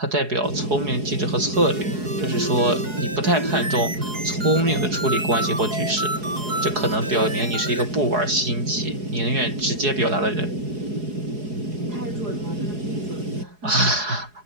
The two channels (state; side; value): late; left; 4.8 ms